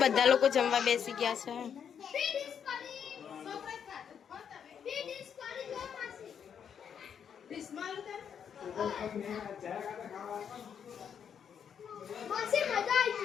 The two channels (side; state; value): right; quieter; 7.8 dB